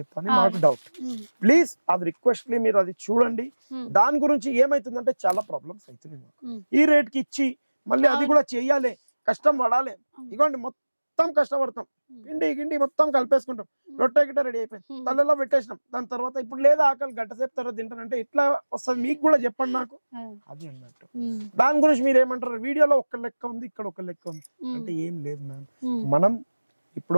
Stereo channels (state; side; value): inverted; both; correlation -1.00